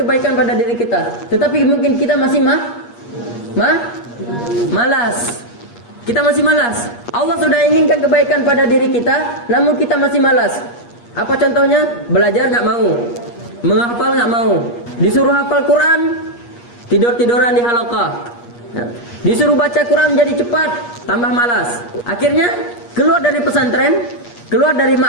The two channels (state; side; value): late; right; 8.4 ms